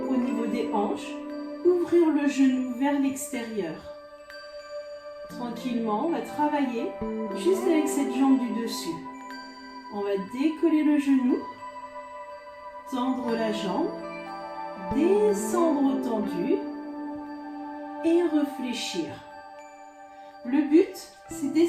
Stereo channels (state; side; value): identical; both; correlation 1.00